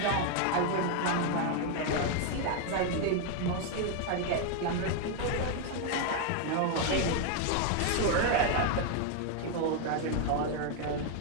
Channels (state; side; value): different; both; correlation 0.01